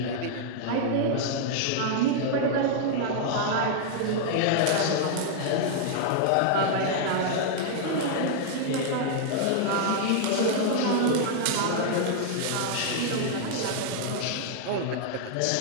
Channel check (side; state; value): both; different; correlation -0.01